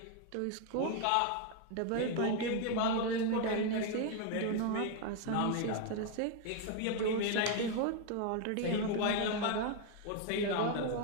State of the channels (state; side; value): different; both; correlation 0.01